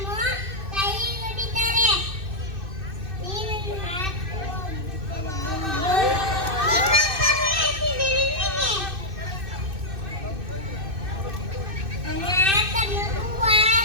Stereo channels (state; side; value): late; left; 2.6 ms